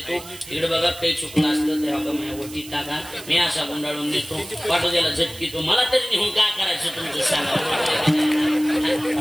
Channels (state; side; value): noise; right; hiss, 16 dB below the sound